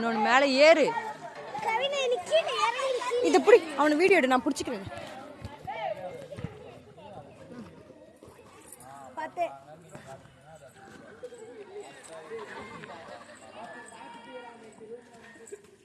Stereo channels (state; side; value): identical; both; correlation 1.00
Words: மேல ஏறு. இத புடி, அவன வீடியோ எடு, நான் புடிச்சுக்கிறேன். பாத்தே